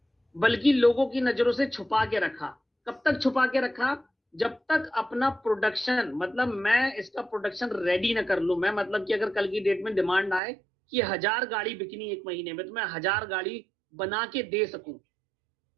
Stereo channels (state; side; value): drops out; left; at 10.4 s